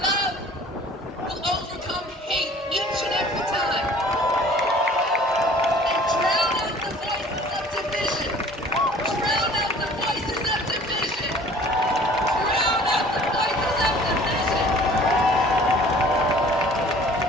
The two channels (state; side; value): normal; both; correlation 0.50